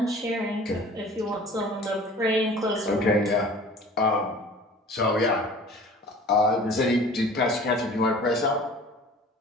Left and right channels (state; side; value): normal; both; correlation 0.45